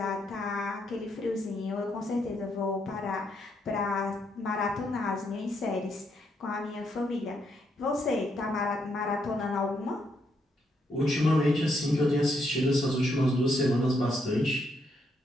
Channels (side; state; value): both; normal; correlation 0.77